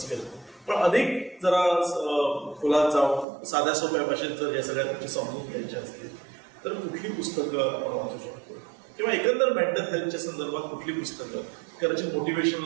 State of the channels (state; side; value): drops out; left; at 3.2 s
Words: केला, पण अधिक जरा खोलात जाऊन साध्या सोप्या भाषेत जर या सगळ्या गोष्टी समजून घ्यायच्या असतील तर कुठली पुस्तकं आपण वाचू शकतो, किंवा एकंदर मेंटल हेल्थच्या संदर्भात कुठली पुस्तकं, कदाचित